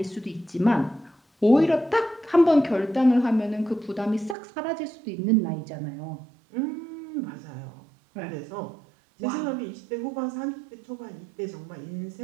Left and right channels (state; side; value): drops out; left; at 4.4 s